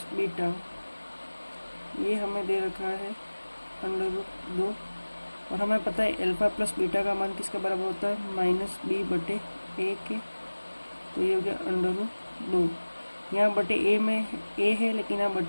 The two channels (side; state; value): both; inverted; correlation -1.00